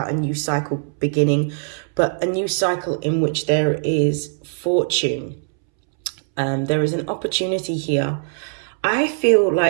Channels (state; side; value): silent; left; 65 dB below the other